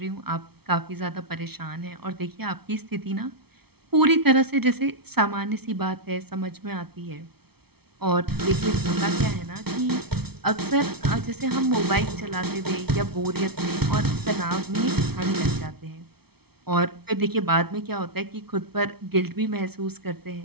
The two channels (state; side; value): late; left; 0.96 ms